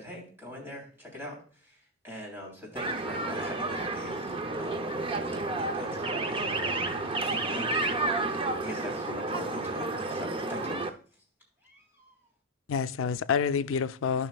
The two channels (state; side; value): normal; both; correlation 0.00